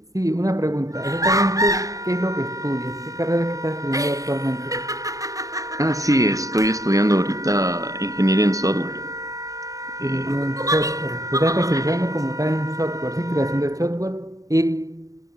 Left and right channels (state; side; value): late; left; 0.16 ms